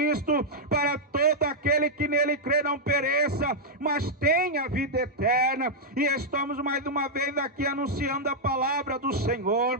para todo aquele que nele crê não pereça, mas tenha vida eterna. E estamos mais uma vez aqui anunciando a palavra do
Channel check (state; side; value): normal; both; correlation -0.04